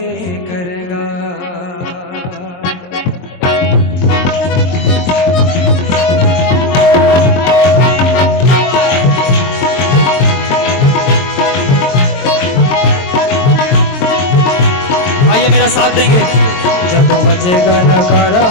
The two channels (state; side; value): late; right; 22 ms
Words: करेगा। आइए मेरा साथ देंगे। जदों वजेगा नकारा